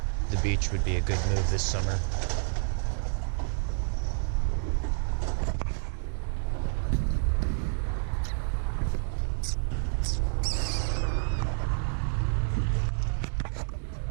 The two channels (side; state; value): left; silent; digital silence